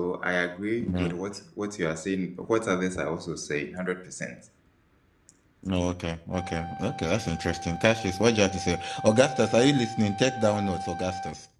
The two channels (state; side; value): identical; both; correlation 1.00